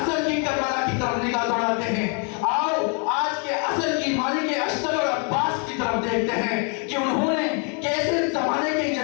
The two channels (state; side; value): quieter; right; 38.1 dB